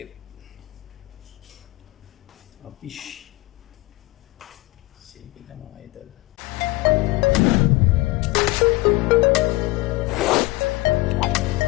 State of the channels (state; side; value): quieter; right; 20.8 dB